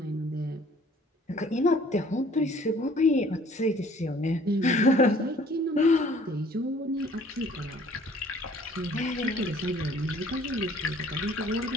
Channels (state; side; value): normal; both; correlation 0.55